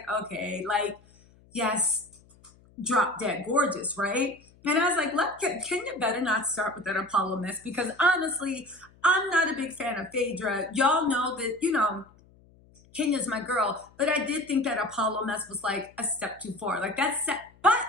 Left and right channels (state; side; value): noise; left; hum, 28 dB below the sound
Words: okay, like, yes, drop dead gorgeous, right? And I was like, Kenya better not start with that Apollo mess because honestly, I'm not a big fan of Phaedra. Y'all know that, Kenya's my girl, but I did think that Apollo mess was like a step too far. Like but